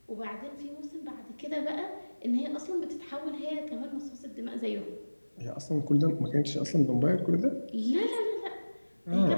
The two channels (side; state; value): both; inverted; correlation -1.00